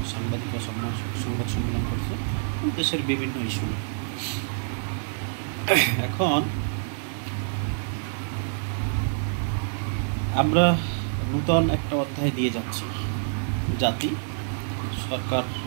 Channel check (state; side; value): silent; left; digital silence